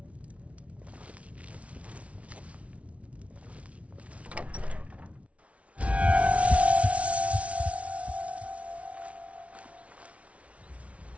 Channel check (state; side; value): late; left; 0.064 ms